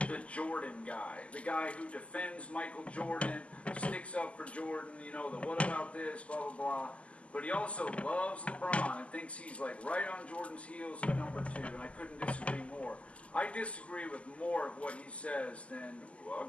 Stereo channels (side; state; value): right; late; 0.060 ms